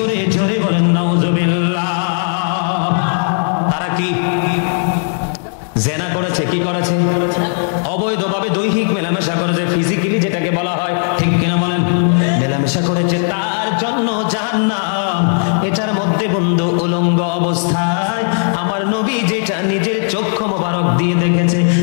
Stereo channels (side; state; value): right; silent; digital silence